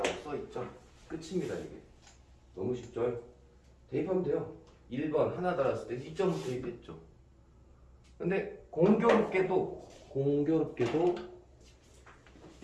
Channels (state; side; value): identical; both; correlation 1.00